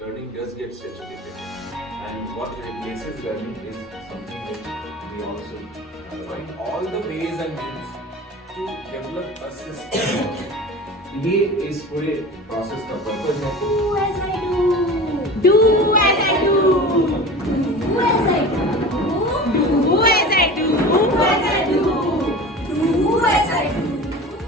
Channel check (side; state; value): both; normal; correlation 0.35